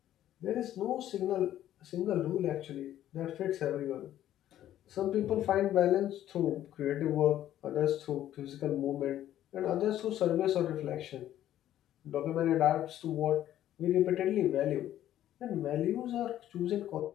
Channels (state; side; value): quieter; right; 12.2 dB